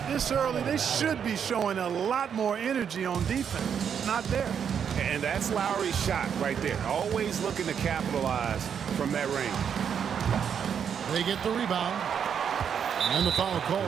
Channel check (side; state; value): left; quieter; 7.7 dB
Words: this early, they should be showing a lot more energy on defense. It's not there. And that's Lowry's shot right there. Always looking to capitalize from that range. They get the rebound. And the foul